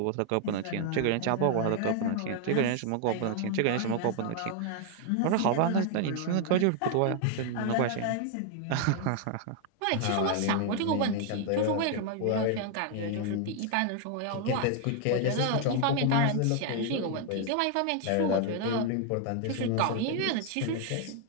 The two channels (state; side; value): different; both; correlation 0.00